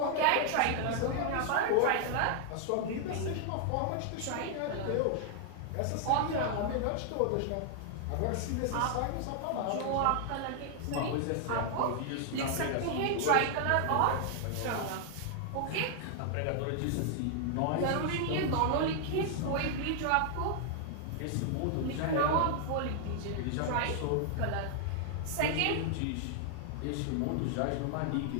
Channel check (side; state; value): both; different; correlation 0.00